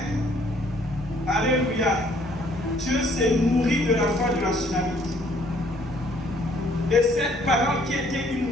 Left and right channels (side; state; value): both; normal; correlation 0.62